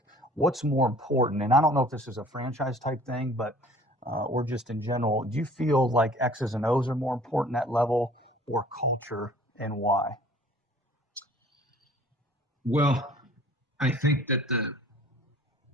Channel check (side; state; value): both; normal; correlation 0.51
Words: what's more important? And I don't know if this is a franchise type thing, but or just in general, do you feel like X's and O's are more important at level or culture, and why? Well, I think that